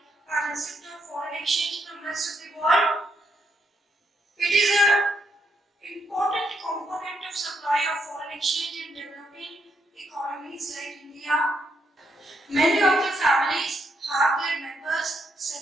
and receipt of foreign exchange from the rest of the world. It is an important component of supply of foreign exchange in developing economies like India. Many of the families have their members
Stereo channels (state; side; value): normal; both; correlation 0.77